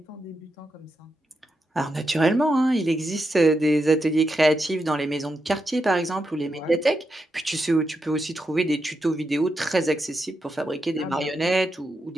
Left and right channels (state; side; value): normal; both; correlation 0.85